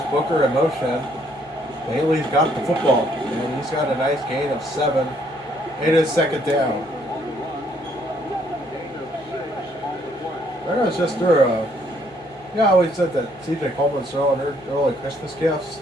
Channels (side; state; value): both; normal; correlation 0.67